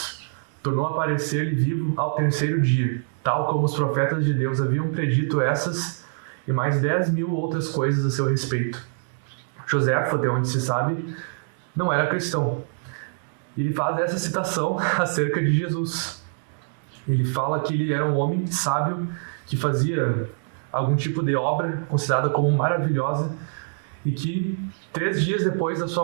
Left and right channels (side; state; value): left; silent; digital silence